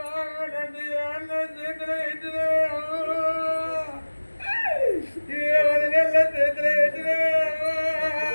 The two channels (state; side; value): inverted; both; correlation -1.00